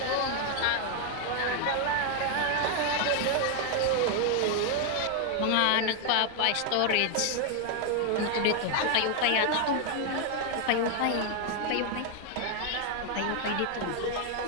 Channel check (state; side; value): different; both; correlation 0.00